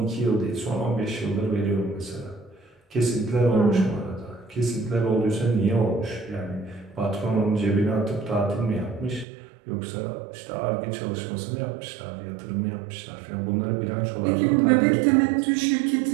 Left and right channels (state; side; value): drops out; left; at 9.2 s